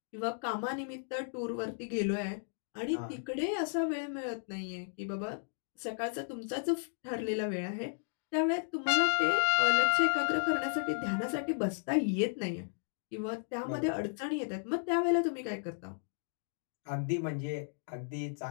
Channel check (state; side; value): silent; right; digital silence